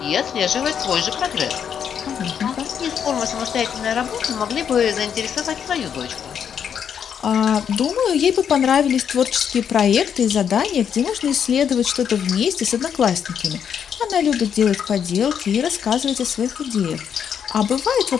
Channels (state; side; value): quieter; right; 8.0 dB